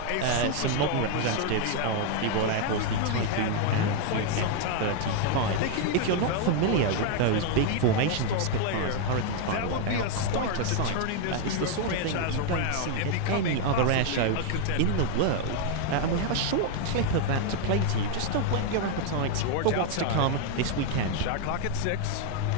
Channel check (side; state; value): both; different; correlation 0.00